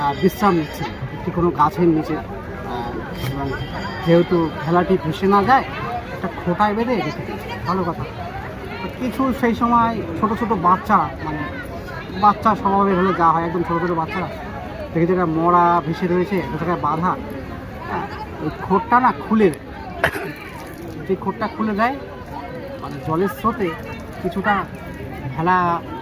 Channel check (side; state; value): both; identical; correlation 1.00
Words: বিশ্রাম নিচ্ছেন একটি কোনো গাছের নিচে, এবং যেহেতু ভেলাটি ভেসে না যায় একটা খোঁটায় বেঁধে রেখে দিয়েছে, ভালো কথা। কিছু সেই সময় ছোট ছোট বাচ্চা, মানে বাচ্চা স্বভাবের হলে যা হয়, একদম ছোটো ছোটো বাচ্চারা দেখে যেটা মরা ভেসে রয়েছে, একটা জায়গায় বাঁধা, ওই খোঁটটা না খুলে দেয়। যে খোঁটটা খুলে দেয় মানে জলের স্রোতে কিছুটা ভেলা